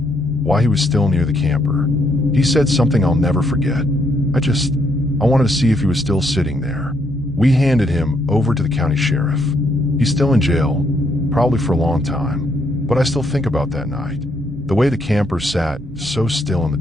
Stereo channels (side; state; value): both; normal; correlation 0.74